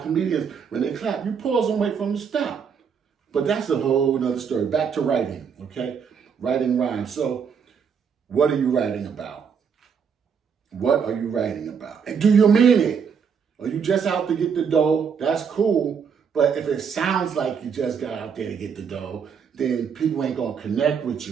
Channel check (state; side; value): quieter; left; 6.6 dB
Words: comedians, when they clap, you pause and wait for them to stop. But that's a whole nother story. Back to writing, okay? Writing rhymes. So what are you writing about? What are you writing about? And do you mean it? Are you just out to get the dough? That's cool. But if it sounds like you just got out there to get the dough, then people ain't going to connect with